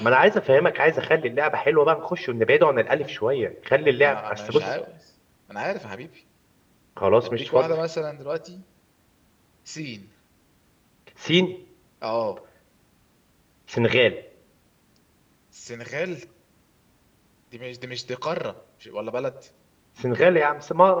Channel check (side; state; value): both; identical; correlation 1.00